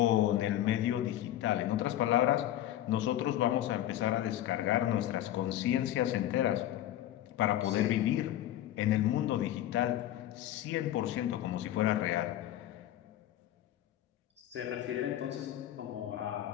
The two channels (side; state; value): right; quieter; 12.9 dB